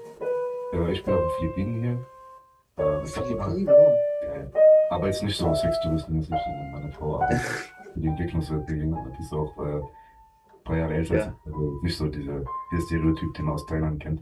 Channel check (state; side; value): identical; both; correlation 1.00